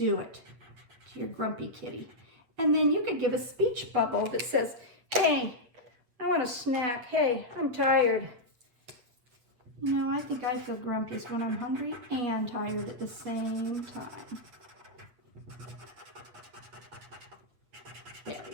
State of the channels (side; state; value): left; late; 8.4 ms